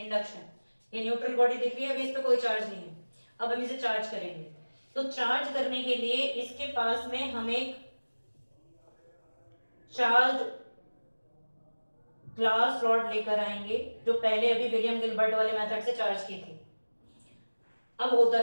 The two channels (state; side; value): inverted; both; correlation -1.00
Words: ये न्यूट्रल बॉडी दिख रही है, अभी इस पे कोई चार्ज नहीं है, अब हम इसे चार्ज करेंगे। तो चार्ज करने के लिए इसके पास में हम एक चार्ज ग्लास रॉड लेकर आएंगे, जो पहले अभी विलियम गिलबर्ट वाले मेथड से चार्ज की थी। अब